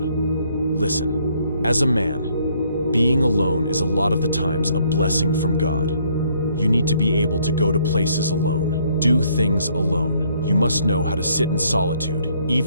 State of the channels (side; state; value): both; inverted; correlation -0.66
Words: Listen, as a man, being alone is a lot of the times a blessing from God. You need to be able to go to places alone, do things alone. You must know how to sit in solitude,